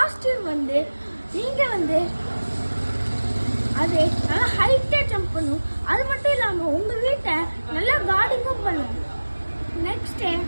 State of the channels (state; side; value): inverted; both; correlation -1.00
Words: வந்து நீங்க வந்து அது நல்லா ஹைட்டாக ஜம்ப் பண்ணும். அது மட்டும் இல்லாமல் உங்கள் வீட்டை நல்லா கார்டனிங்கும் பண்ணும்.